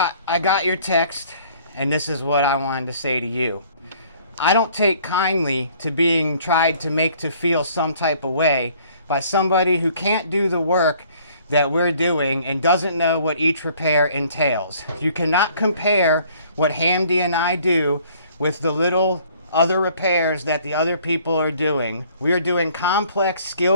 got your text, and this is what I wanted to say to you. I don't take kindly to being tried to make to feel some type of way by somebody who can't do the work that we're doing and doesn't know what each repair entails. You cannot compare what Hamdi and I do with the little other repairs that the other people are doing. We are doing complex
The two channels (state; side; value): inverted; both; correlation -0.57